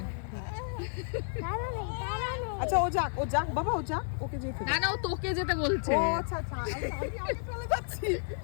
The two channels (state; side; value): silent; right; digital silence